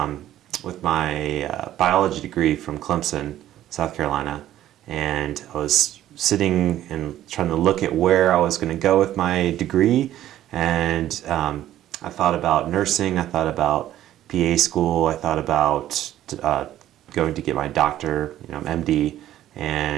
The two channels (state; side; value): quieter; left; 12.8 dB